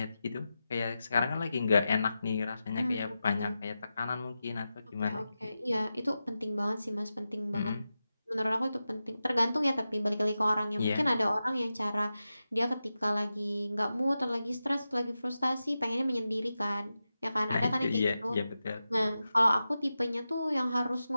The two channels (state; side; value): inverted; both; correlation -0.92